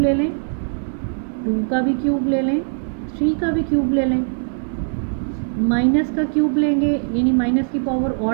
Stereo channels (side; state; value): left; silent; 61 dB below the other